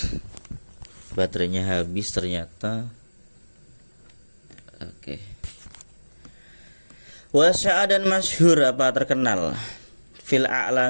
Baterainya habis ternyata. Oke. Wasya'a dan masyhur apa terkenal fil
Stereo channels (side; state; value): both; inverted; correlation -1.00